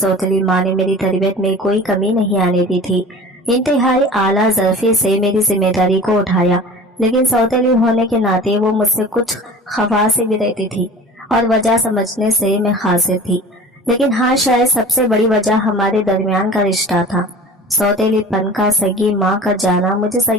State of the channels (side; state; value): both; normal; correlation 0.40